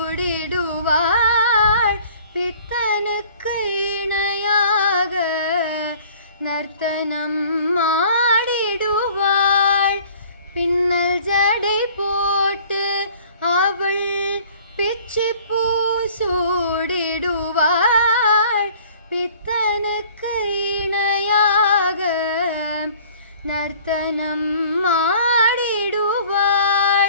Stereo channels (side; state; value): both; inverted; correlation -0.51